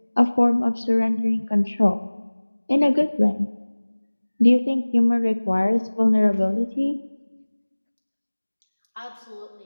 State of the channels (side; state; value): both; inverted; correlation -1.00